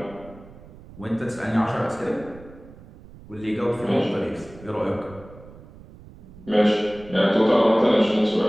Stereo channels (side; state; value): right; noise; rumble, 20 dB below the sound